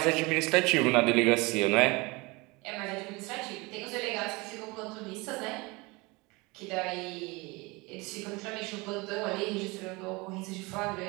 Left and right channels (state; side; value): quieter; left; 25.0 dB